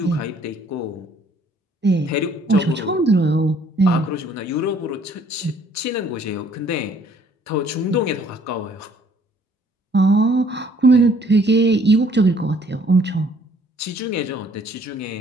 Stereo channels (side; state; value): both; normal; correlation 0.61